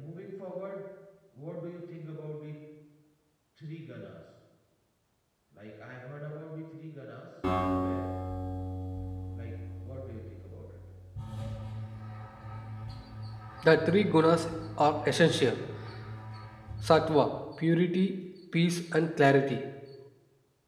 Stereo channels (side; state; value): both; identical; correlation 1.00